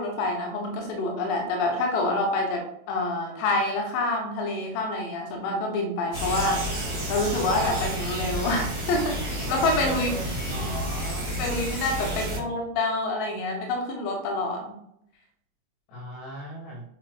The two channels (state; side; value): late; right; 23 ms